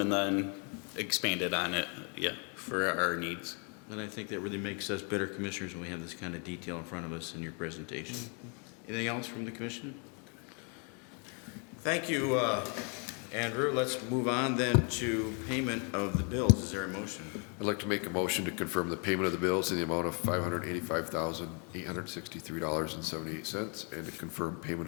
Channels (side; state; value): right; quieter; 37.6 dB